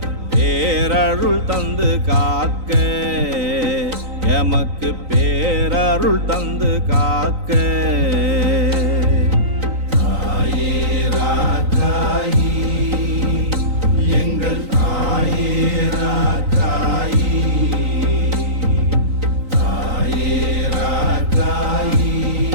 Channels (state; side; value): late; left; 3.9 ms